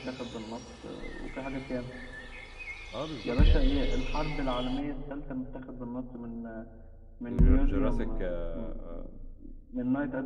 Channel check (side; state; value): both; identical; correlation 1.00